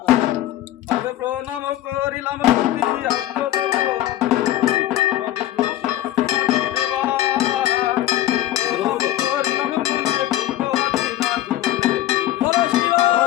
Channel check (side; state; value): right; quieter; 13.7 dB